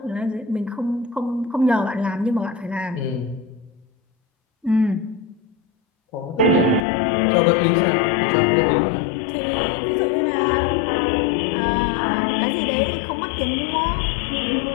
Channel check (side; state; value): right; drops out; at 6.8 s